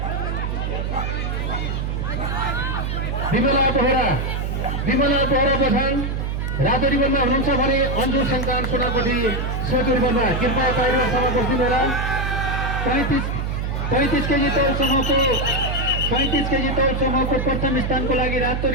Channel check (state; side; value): noise; right; hum, 2 dB below the sound